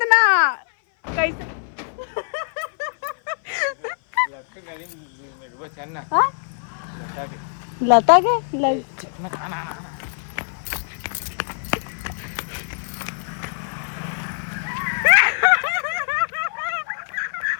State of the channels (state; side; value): silent; right; 58 dB below the other